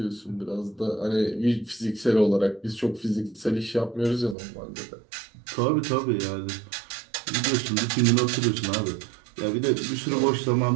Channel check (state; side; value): drops out; left; at 4.4 s